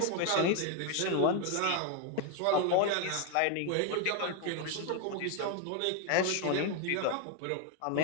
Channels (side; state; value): both; different; correlation 0.01